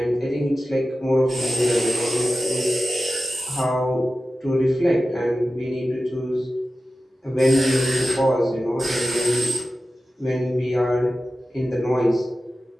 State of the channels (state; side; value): normal; both; correlation 0.94